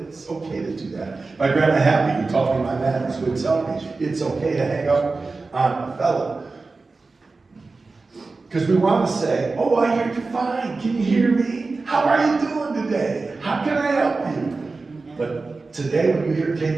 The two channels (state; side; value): quieter; left; 3.8 dB